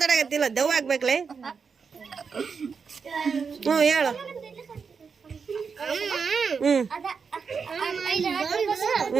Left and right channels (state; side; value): quieter; left; 5.7 dB